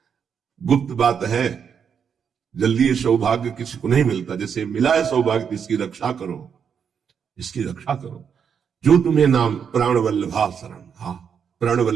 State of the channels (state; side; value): quieter; left; 7.2 dB